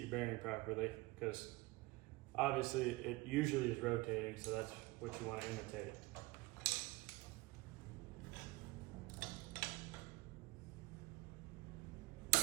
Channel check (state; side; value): quieter; left; 21.8 dB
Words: bearing properly, because obviously it usually is rotating, so that's what you want to imitate.